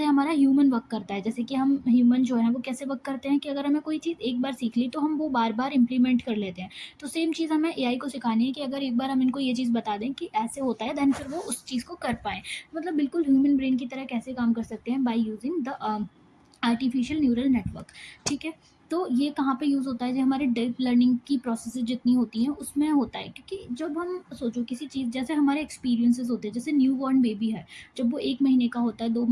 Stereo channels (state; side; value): identical; both; correlation 1.00